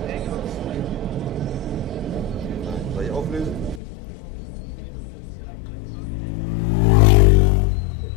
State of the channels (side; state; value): right; drops out; at 3.8 s